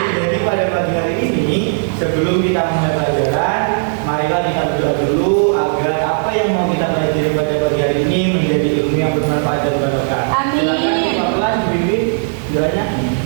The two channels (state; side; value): silent; left; digital silence